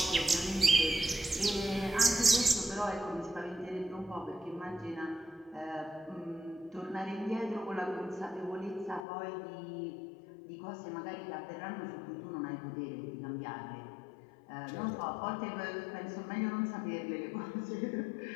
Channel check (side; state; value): right; drops out; at 9.1 s